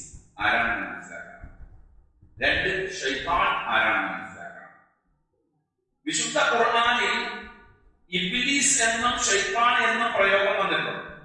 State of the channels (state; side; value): identical; both; correlation 1.00